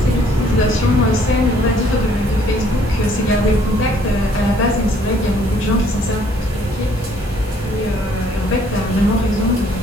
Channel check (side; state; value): both; normal; correlation 0.62